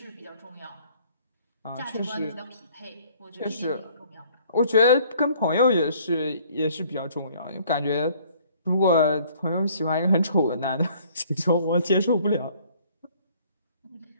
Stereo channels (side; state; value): both; inverted; correlation -0.58